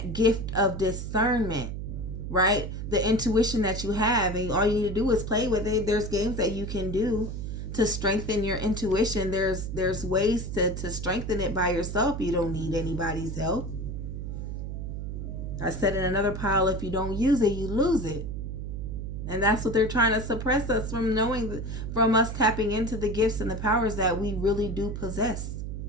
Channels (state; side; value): noise; right; hum, 5 dB below the sound